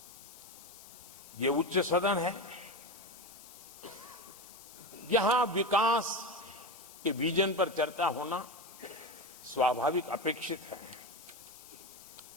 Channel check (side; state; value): left; noise; hiss, 18 dB below the sound